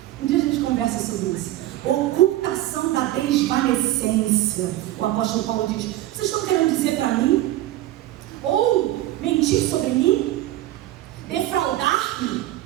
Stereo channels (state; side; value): quieter; left; 15.0 dB